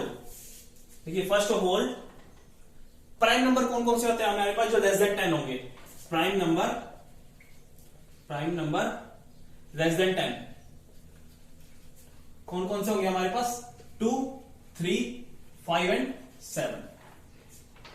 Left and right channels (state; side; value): identical; both; correlation 1.00